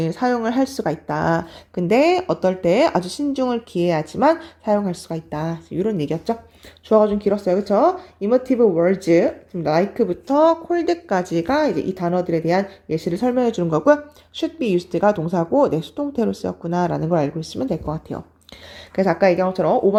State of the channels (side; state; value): both; identical; correlation 1.00